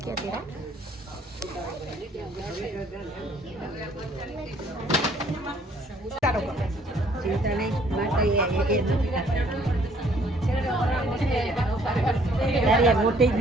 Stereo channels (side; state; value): both; normal; correlation 0.61